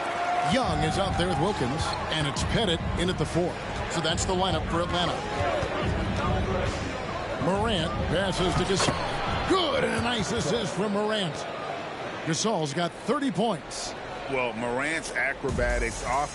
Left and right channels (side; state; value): both; identical; correlation 1.00